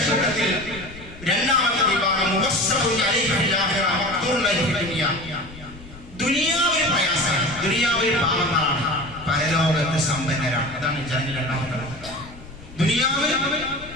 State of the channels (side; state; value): left; noise; rumble, 18 dB below the sound